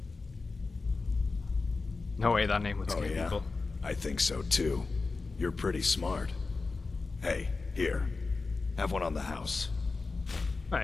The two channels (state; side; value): quieter; right; 4.0 dB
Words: No way that name would scare yeah? people. I think so too. You're pretty smart. Hey, here. Have one on the house.